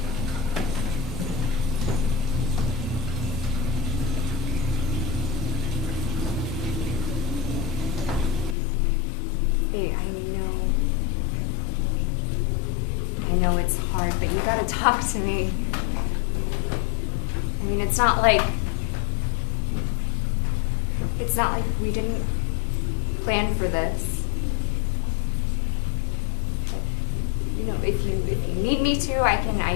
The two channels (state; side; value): drops out; right; at 8.6 s